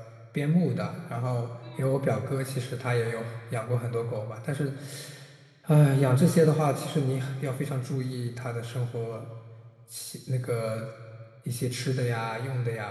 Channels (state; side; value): identical; both; correlation 1.00